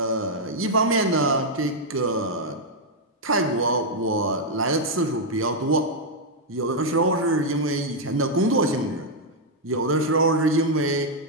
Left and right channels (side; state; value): both; normal; correlation -0.03